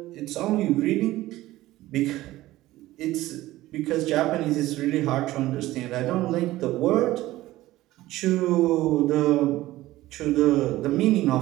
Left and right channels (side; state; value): left; quieter; 16.6 dB